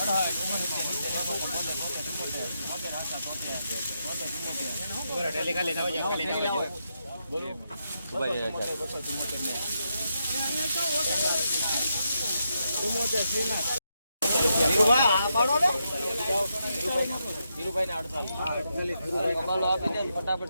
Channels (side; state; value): both; inverted; correlation -0.83